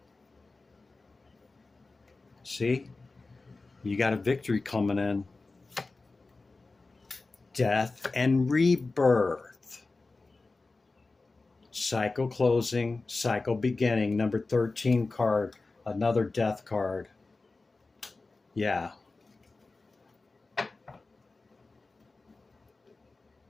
See? You got a victory coming in. Death and rebirth. Cycle closing, cycle beginning. Number 13 card. Another death card. Yeah.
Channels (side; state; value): right; quieter; 3.6 dB